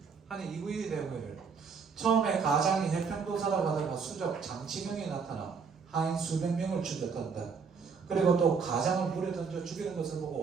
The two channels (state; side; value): quieter; left; 5.6 dB